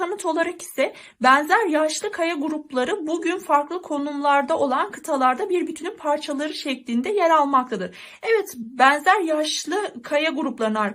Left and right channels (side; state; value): both; identical; correlation 1.00